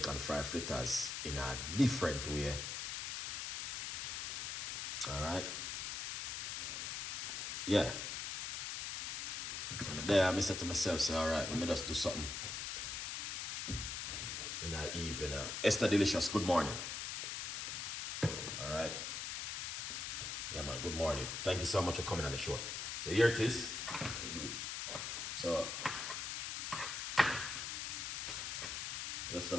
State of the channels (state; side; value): noise; left; hiss, 3 dB below the sound